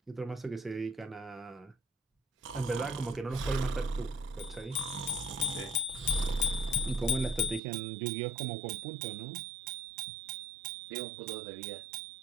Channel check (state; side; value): drops out; left; at 7.6 s